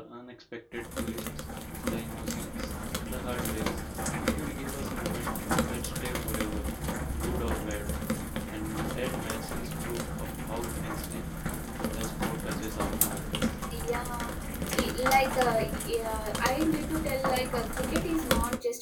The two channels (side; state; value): both; identical; correlation 1.00